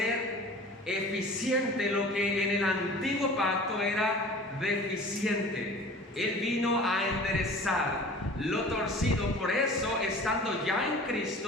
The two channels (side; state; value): both; normal; correlation 0.42